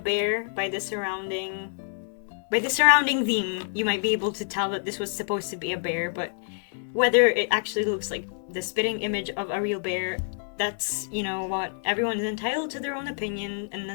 by the surrounding theme. You might be able to tell that this was supposed to be a bear, but whether it actually looks like the spitting image of a real bear, that's, you know what, everyone is entitled to their own opinion, and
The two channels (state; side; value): silent; right; 60 dB below the other